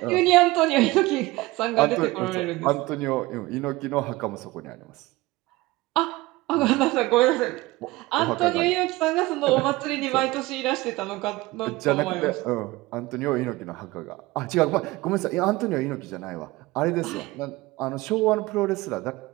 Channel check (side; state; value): left; quieter; 20.2 dB